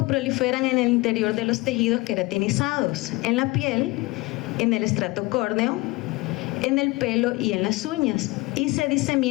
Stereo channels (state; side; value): quieter; right; 22.6 dB